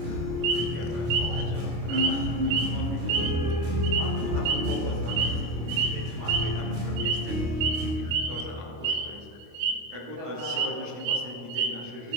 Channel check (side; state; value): left; late; 25 ms